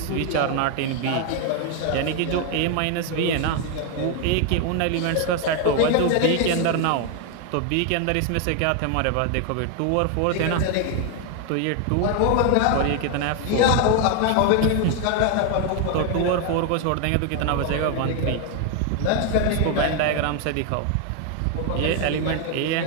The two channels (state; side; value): different; both; correlation 0.01